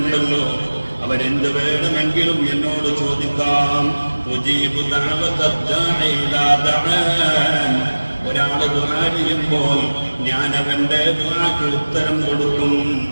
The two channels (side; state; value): both; inverted; correlation -1.00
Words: അവരെന്ത് വേണമെങ്കിലും എന്നോട് ചോദിക്കാം. ഒരാള് ദുആ ചെയ്യുമ്പോൾ ഞാൻ അവന്റെ ദുആക്ക് ഉത്തരം കൊടുക്കും.